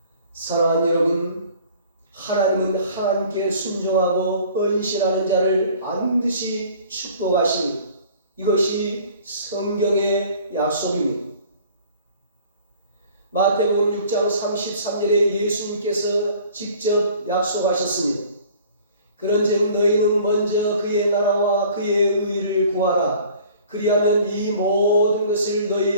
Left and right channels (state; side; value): inverted; both; correlation -0.50